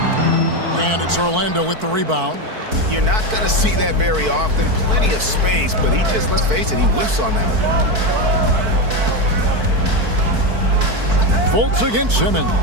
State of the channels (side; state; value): left; late; 4.5 ms